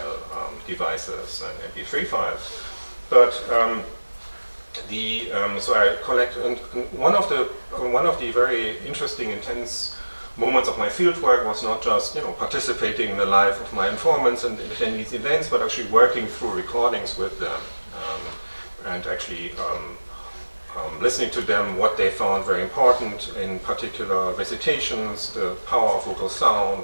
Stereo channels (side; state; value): both; inverted; correlation -1.00